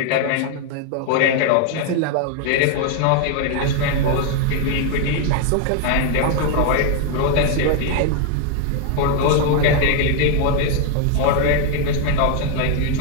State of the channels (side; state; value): both; different; correlation 0.00